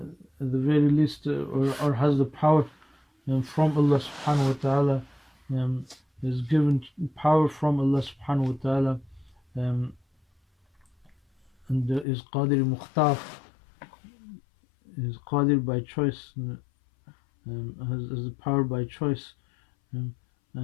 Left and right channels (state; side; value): drops out; right; at 12.1 s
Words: at the very least, or has the power from Allah subhanahu wa ta'ala, is given power from Allah subhanahu wa ta'ala, and is qadir mukhtar, is qadir by choice, has the power by choice,